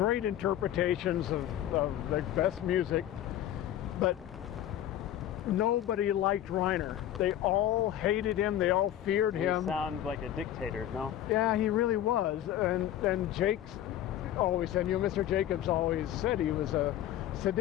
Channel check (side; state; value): right; quieter; 12.0 dB